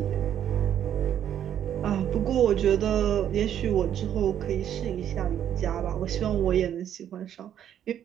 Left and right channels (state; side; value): quieter; left; 10.1 dB